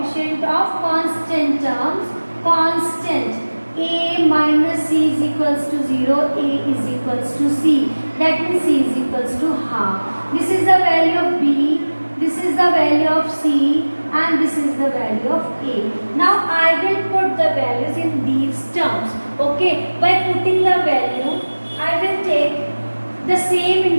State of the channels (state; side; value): inverted; both; correlation -1.00